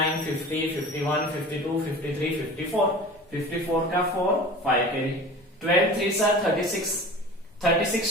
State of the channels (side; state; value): both; normal; correlation 0.38